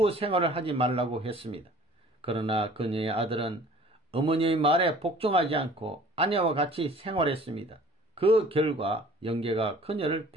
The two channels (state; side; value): normal; both; correlation 0.50